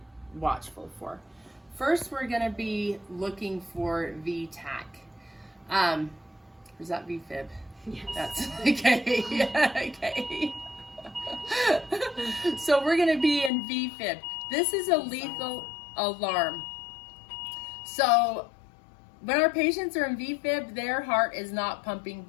watchful for. First, we're going to be looking for VTAC. Is that VFib? Yes. That's okay. Okay. So we're going to be in VFib. This is a lethal alarm. So when our patients are in VFib, their heart is not pumping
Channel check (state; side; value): drops out; right; at 13.5 s